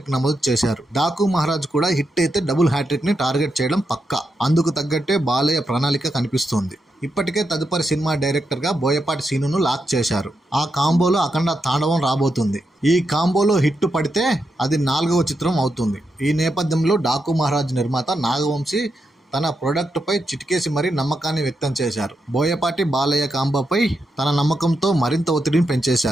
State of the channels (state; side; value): normal; both; correlation 0.85